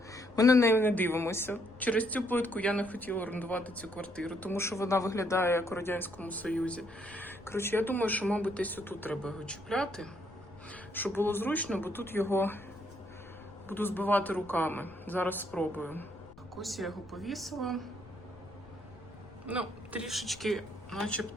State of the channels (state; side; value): noise; left; rumble, 21 dB below the sound